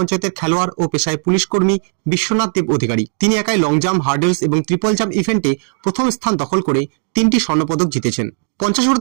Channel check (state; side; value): silent; left; digital silence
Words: খেলোয়াড় ও পেশায় পুলিশ কর্মী বিশ্বনাথ দেব অধিকারী। তিনি একাই লং জাম্প, হার্ডেলস এবং ট্রিপল জাম্প ইভেন্টে প্রথম স্থান দখল করে 3টি স্বর্ণপদক জিতেছেন।